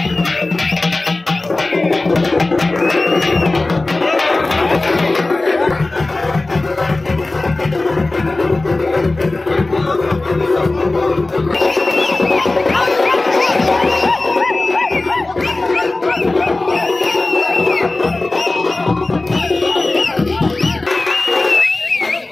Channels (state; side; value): quieter; right; 3.1 dB